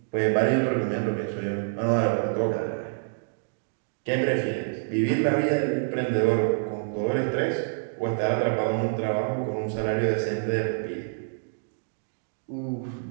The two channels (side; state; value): left; silent; digital silence